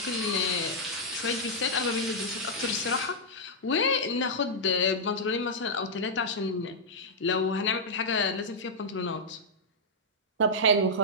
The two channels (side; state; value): both; normal; correlation -0.06